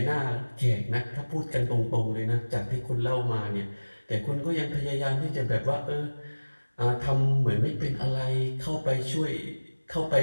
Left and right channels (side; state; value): both; inverted; correlation -1.00